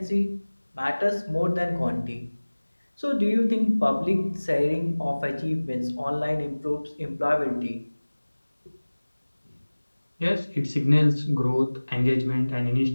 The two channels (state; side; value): inverted; both; correlation -1.00